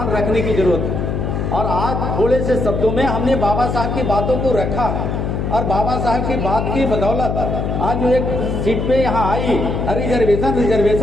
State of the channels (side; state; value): left; noise; hum, 2 dB below the sound